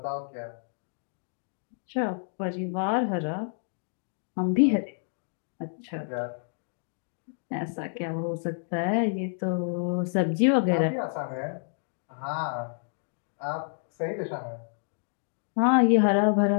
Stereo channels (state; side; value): silent; right; digital silence